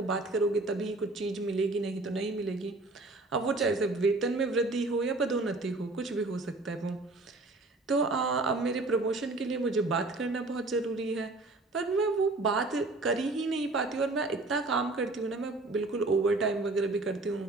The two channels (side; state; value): left; quieter; 3.1 dB